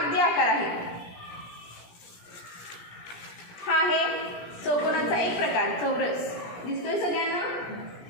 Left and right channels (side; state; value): right; late; 17 ms